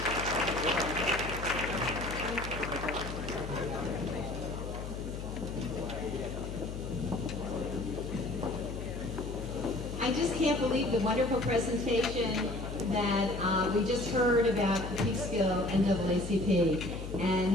I just can't believe the wonderful presentation that we just heard about the Peekskill NAACP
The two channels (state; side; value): noise; left; hum, 7 dB below the sound